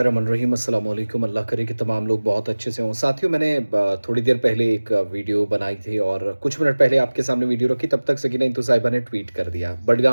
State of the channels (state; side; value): inverted; both; correlation -1.00